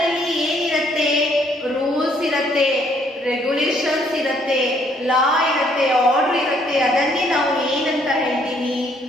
ಏನಿರುತ್ತೆ? ರೂಲ್ಸ್ ಇರುತ್ತೆ, ರೆಗ್ಯುಲೇಷನ್ಸ್ ಇರುತ್ತೆ, ಲಾ ಇರುತ್ತೆ, ಆರ್ಡರ್ ಇರುತ್ತೆ. ಅದನ್ನೇ ನಾವು ಏನಂತ ಹೇಳ್ತೀವಿ?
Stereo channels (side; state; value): both; normal; correlation 0.66